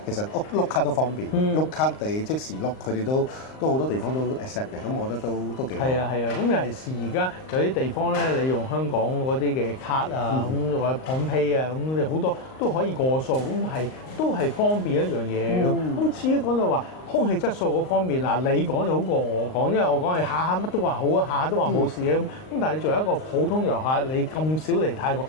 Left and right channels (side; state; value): right; late; 38 ms